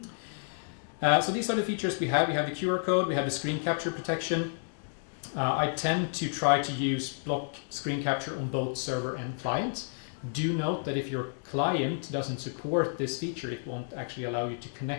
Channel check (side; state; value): right; silent; digital silence